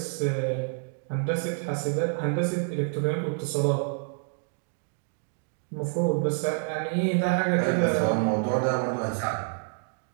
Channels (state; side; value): silent; left; 59 dB below the other